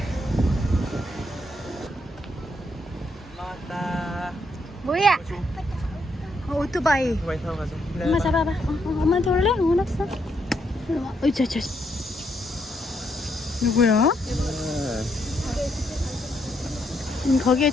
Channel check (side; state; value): both; normal; correlation 0.76